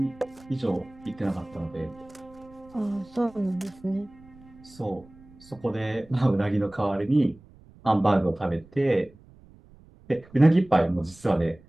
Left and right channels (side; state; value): right; noise; rumble, 25 dB below the sound